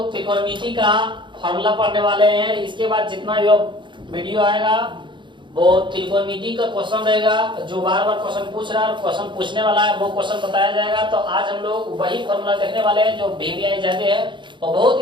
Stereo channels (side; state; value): left; late; 0.23 ms